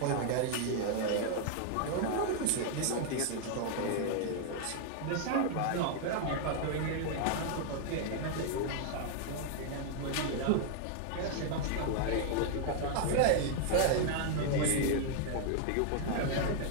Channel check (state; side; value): different; both; correlation 0.00